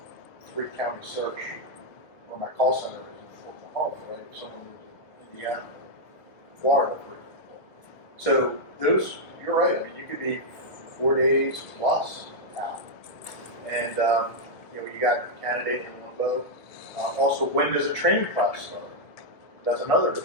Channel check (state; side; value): late; right; 1.6 ms